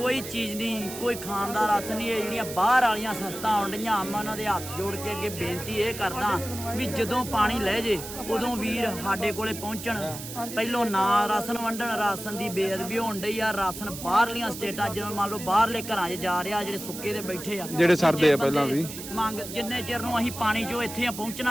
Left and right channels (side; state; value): right; noise; hiss, 10 dB below the sound